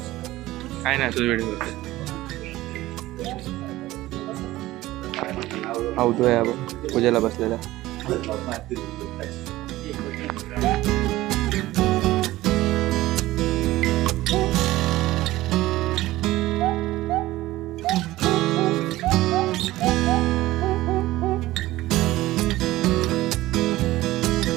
काय नाही तुझं व्हिडिओ आवतोय पूजेला बसलेला.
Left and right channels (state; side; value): quieter; left; 17.0 dB